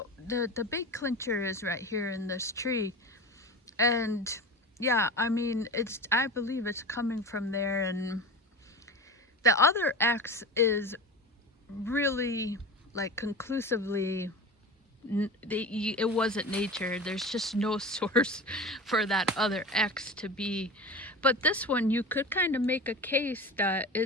the big clincher is right here in this tree. And yeah, I mean, I believe it's coming from there. And the other X is really like conclusively it wasn't nature. There's just no source for that other X to be. But this one, you could kind of make a case that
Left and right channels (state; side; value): normal; both; correlation 0.31